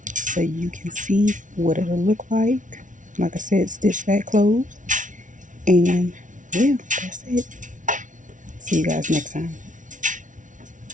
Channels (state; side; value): late; left; 0.37 ms